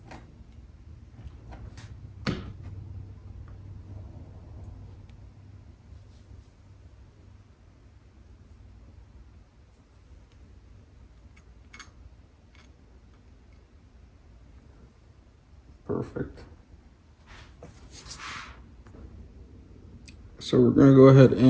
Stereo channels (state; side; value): identical; both; correlation 1.00